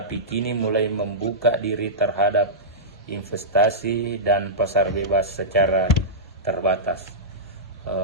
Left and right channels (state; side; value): normal; both; correlation -0.15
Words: kini mulai membuka diri terhadap investasi dan pasar bebas secara terbatas.